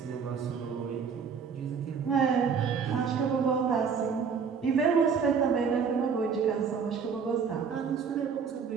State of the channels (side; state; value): left; quieter; 6.2 dB